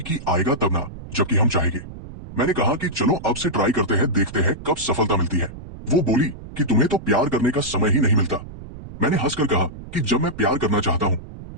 कि आएगा तब ना, जबकि हम चाहेंगे। मैंने कहा कि चलो अब से ट्राई करते हैं, देखते हैं कब सफलता मिलती है। वो बोली कि तुम्हें तो प्यार करने का समय ही नहीं मिलता। मैंने हंसकर कहा कि जब मैं प्यार करना चाहता हूं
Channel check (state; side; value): noise; right; rumble, 14 dB below the sound